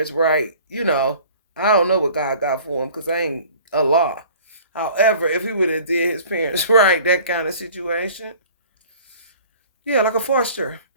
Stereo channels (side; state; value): both; inverted; correlation -0.48